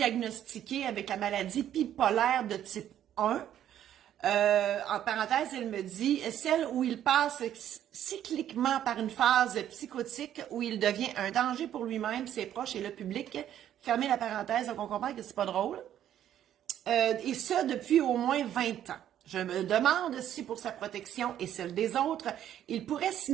avec la maladie bipolaire de type 1. En parenthèse, elle me dit, celle où il passe cycliquement par une phase psychotique où il devient un danger pour lui-même, ses proches et le public. Fermez la parenthèse, donc on comprend que c'est pas drôle. Et ça depuis au moins 20 ans. Je me demande si pour sa protection et celle des autres, il pourrait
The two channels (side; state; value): left; quieter; 11.0 dB